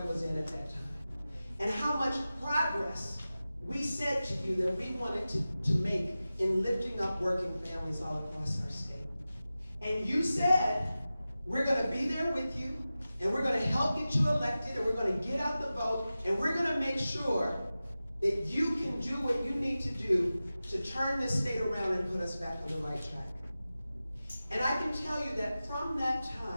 was in at that time. And how much progress we said to you that we wanted to make in lifting up working families all across our state. And you said, we're going to be there with you, and we're going to help get you elected, and we're going to get out the vote, and we're going to make sure that you can do what you need to do to turn this state around and put us back on the right track. And I can tell you that from that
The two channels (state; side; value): inverted; both; correlation -0.95